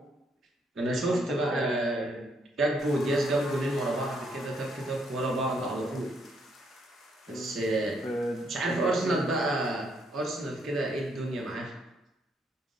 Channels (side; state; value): both; normal; correlation 0.72